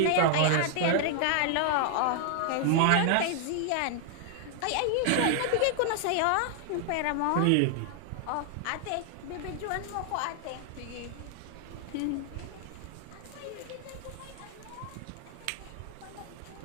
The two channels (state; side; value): different; both; correlation 0.00